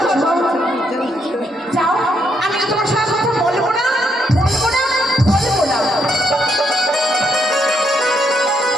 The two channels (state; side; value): normal; both; correlation 0.75